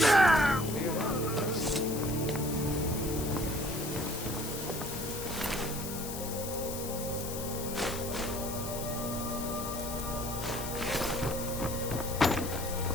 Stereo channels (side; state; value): left; noise; hiss, 8 dB below the sound